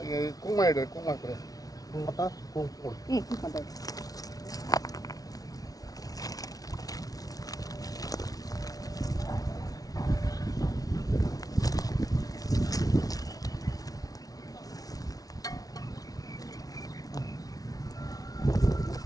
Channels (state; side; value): late; right; 0.18 ms